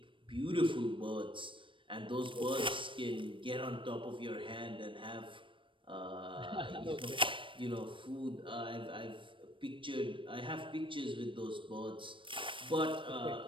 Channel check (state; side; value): late; left; 0.25 ms